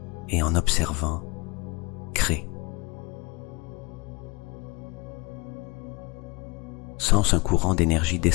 et en observant, crée. Sens un courant d'énergie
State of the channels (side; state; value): right; quieter; 27.0 dB